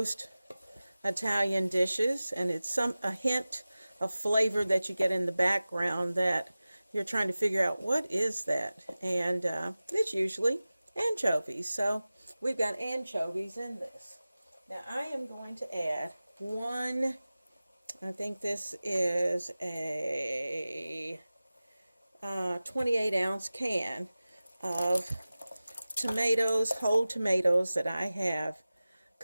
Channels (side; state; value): both; inverted; correlation -0.97